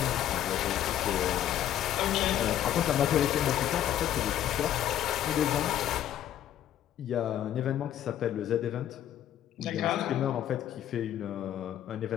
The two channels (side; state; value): right; quieter; 11.4 dB